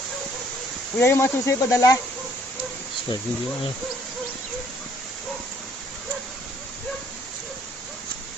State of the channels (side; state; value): both; normal; correlation 0.62